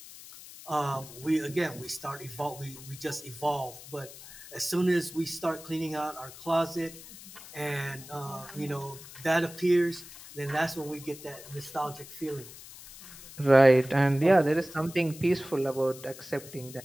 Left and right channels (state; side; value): noise; left; hiss, 16 dB below the sound